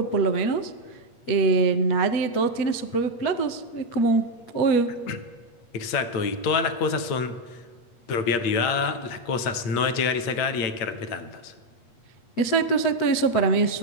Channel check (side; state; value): right; late; 8.4 ms